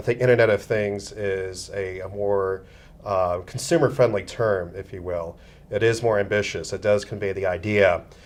think Internet of Things is a more consumer-friendly term, if you will. It is more ambitious. It does convey the idea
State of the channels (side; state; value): both; identical; correlation 1.00